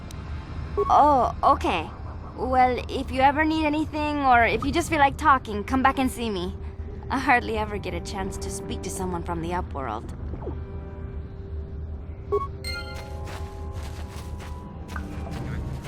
Oh, okay. Well, if you ever need anything, or if you just feel like talking, come back and see me. I hardly ever get a chance to speak to someone from the upworld.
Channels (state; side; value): identical; both; correlation 1.00